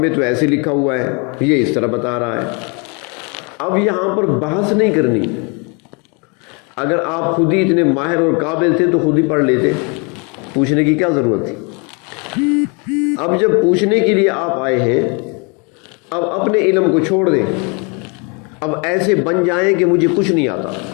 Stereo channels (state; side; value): quieter; right; 32.8 dB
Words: تو ایسے لکھا ہوا ہے، یہ اس طرح بتا رہا ہے. اب یہاں پر بحث نہیں کرنی. اگر آپ خود ہی اتنے ماہر اور قابل تھے تو خود ہی پڑھ لیتے، پوچھنے کی کیا ضرورت تھی. اب جب پوچھنے کے لیے آپ آئے ہیں، اب اپنے علم کو چھوڑ دیں. اب ایسے بن جائیں کہ مجھے کچھ نہیں آتا،